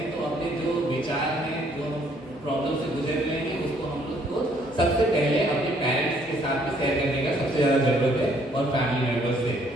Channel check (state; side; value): normal; both; correlation 0.65